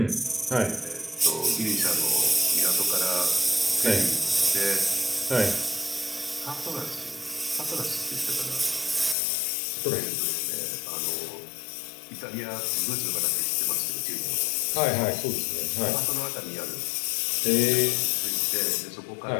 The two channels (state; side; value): drops out; right; at 9.2 s